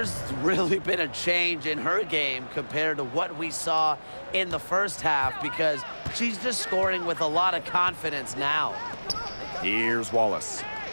really been a change in her game compared to what we saw in the first half, because she's just scoring with a lot of confidence now. Here's Wallace.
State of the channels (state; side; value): inverted; both; correlation -1.00